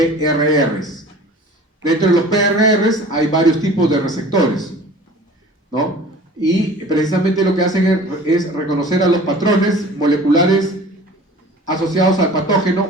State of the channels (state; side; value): normal; both; correlation 0.44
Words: Dentro de los PRRs hay varios tipos de receptores. ¿no? Y precisamente lo que hacen es reconocer a los patrones moleculares asociados al patógeno